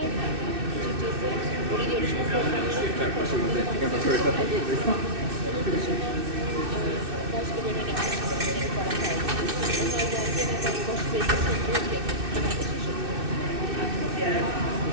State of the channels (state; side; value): late; left; 2.6 ms